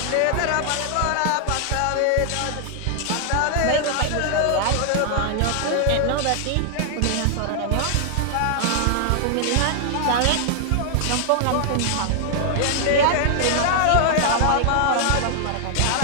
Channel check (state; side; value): different; both; correlation -0.01